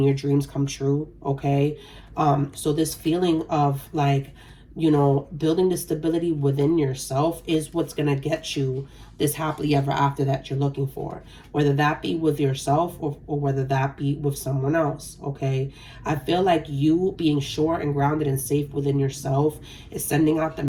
your dreams come true, okay? So this feeling of like you know, building the stability within yourself is what's going to get you this happily ever after that you're looking for, whether that be with yourself or whether that be with someone else. Okay, I feel like you being sure and grounded and safe within yourself is sending out the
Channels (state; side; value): identical; both; correlation 1.00